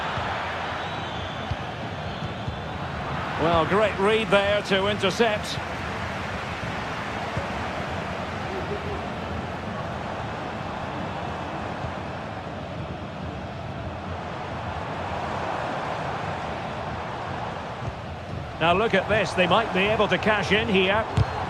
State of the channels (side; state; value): both; identical; correlation 1.00